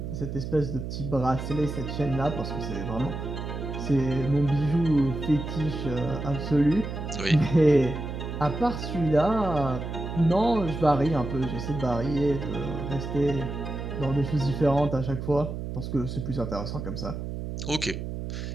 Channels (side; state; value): right; noise; hum, 6 dB below the sound